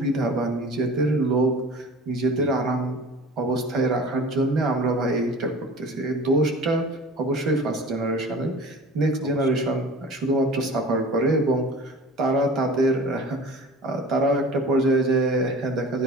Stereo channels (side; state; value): both; normal; correlation 0.41